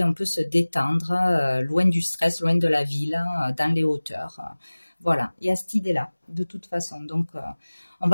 on peut se détendre, loin du stress, loin de la ville, dans les hauteurs. Voilà, il y a cette idée-là, de toute façon. Donc, on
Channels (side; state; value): both; inverted; correlation -1.00